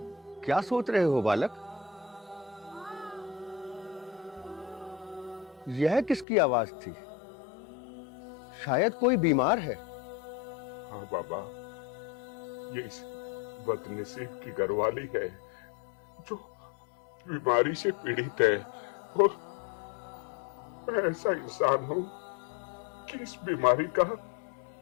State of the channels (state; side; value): drops out; right; at 6.2 s